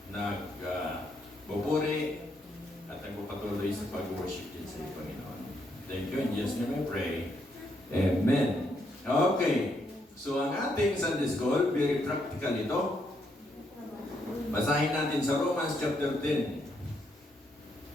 nagbuburi at nagpapatuloy sa pag-worship din sa iyo, Panginoon. Thank you. In Jesus' name I pray. Amen. Okay. So, ang ating Sunday School, very practical ito. Basahin natin sa Romans chapter 10.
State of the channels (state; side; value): normal; both; correlation 0.76